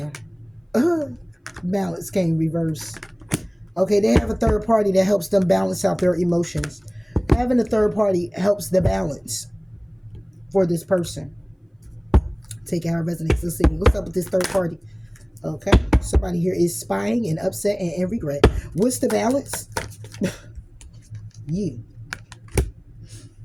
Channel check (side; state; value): both; identical; correlation 1.00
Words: Balance came reverse. Okay, they have a third party that helps them balance out their emotions. Having a third party helps the balance for this person. Take out our resonates. Let's see. What's up with this third party? Okay. Somebody here is spying and upset and in regret. What's the balance? You